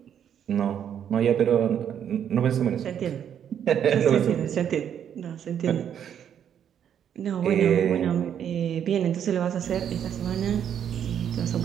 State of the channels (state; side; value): quieter; left; 9.1 dB